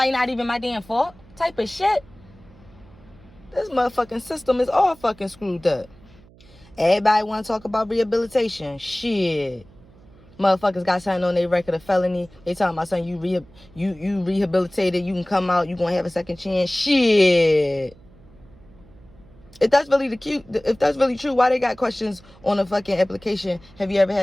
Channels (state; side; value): noise; right; hum, 25 dB below the sound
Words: not even my damn fault. Type of shit. This motherfucking system is all fucking screwed up. Everybody want to talk about rehabilitation. Shit. Motherfuckers got something on their record of felony. They talking about something, you rehabilitated, you can come out, you gonna have a second chance. Shit. If that's really true, why they got questions on the fucking application? Have you ever